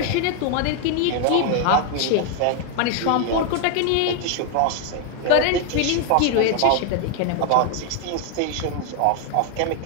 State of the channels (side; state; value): both; different; correlation 0.00